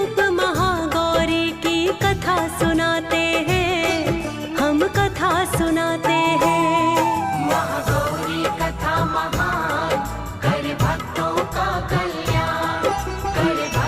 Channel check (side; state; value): both; identical; correlation 1.00